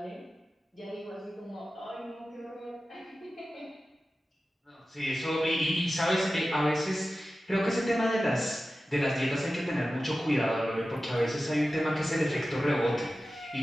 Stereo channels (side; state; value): both; normal; correlation 0.94